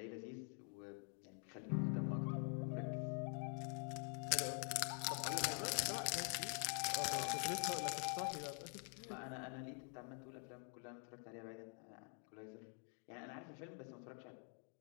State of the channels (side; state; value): right; quieter; 38.9 dB